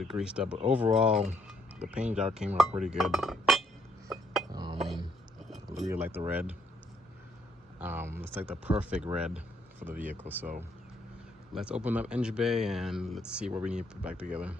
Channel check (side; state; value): both; normal; correlation 0.70